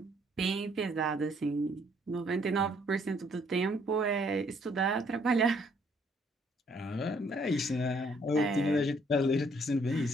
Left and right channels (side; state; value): both; normal; correlation 0.65